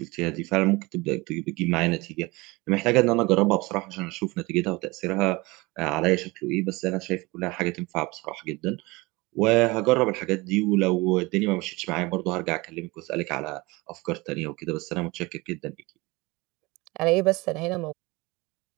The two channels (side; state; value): left; quieter; 23.4 dB